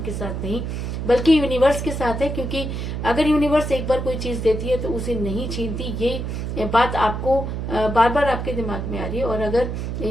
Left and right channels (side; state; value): right; noise; hum, 4 dB below the sound